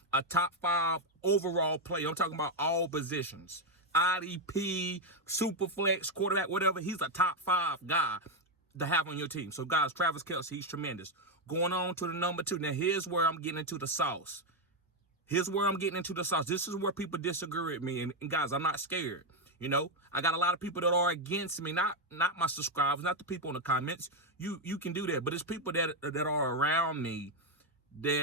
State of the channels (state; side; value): normal; both; correlation 0.04